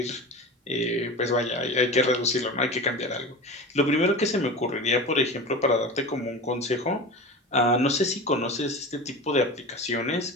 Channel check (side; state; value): both; normal; correlation 0.30